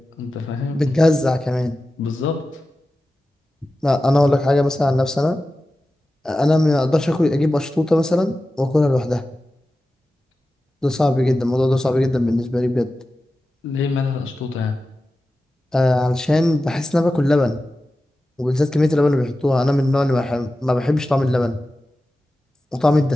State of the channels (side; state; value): both; normal; correlation 0.94